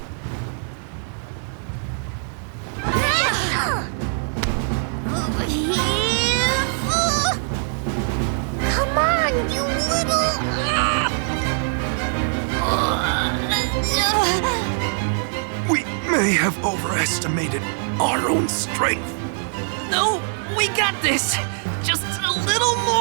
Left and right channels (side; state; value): left; silent; 64 dB below the other